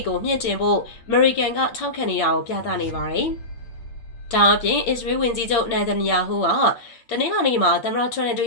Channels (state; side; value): late; right; 8.8 ms